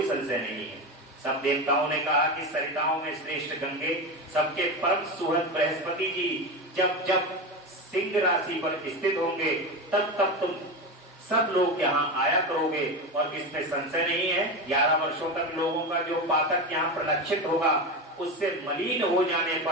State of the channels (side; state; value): both; normal; correlation 0.19